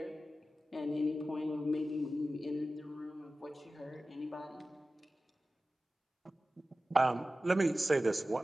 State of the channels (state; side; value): normal; both; correlation 0.95